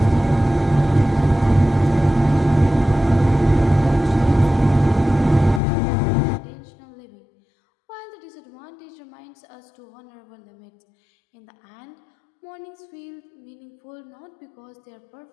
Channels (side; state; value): right; drops out; at 5.6 s